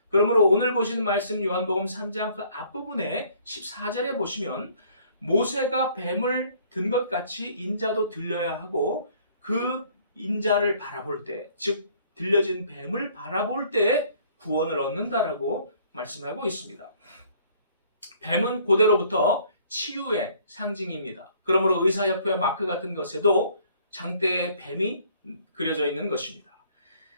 그러므로 오늘 보시는 말씀 요한복음 3장 그 앞부분에 14절에 보시면 모세가 뱀을 든 것 같이 인자도 들려야 하고 그 인자를 바라볼 때, 즉 들려진 뱀을 바라볼 때 구원을 얻는다라고 말씀하고 있습니다. 뱀은 고대로부터 치유의 상징입니다. 그러므로 의사협회 마크 같은 것에도 장대에 뱀이 그려져 있는 것입니다.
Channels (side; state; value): both; inverted; correlation -0.59